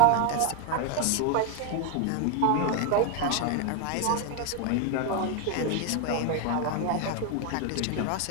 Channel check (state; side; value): different; both; correlation 0.01